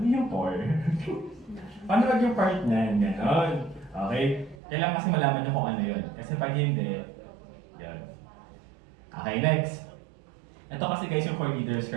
yung core. Paano wag yung part niyan? Ganon. Okay? Kailangan kasi malaman nyo kung ano yun. Kasi pag hindi, yun. Okay, next. Ito kasi guys yung core leaders ka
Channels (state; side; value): drops out; left; at 4.5 s